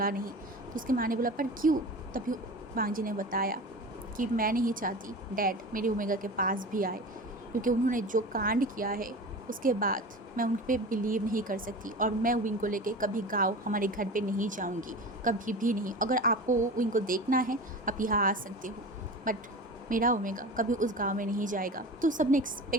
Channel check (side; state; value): both; normal; correlation 0.33